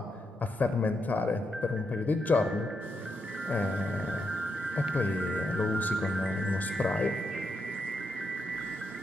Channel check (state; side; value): normal; both; correlation 0.82